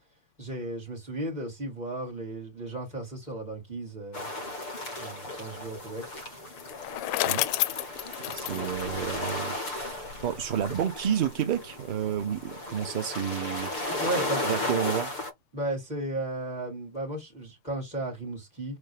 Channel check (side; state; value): right; late; 6.8 ms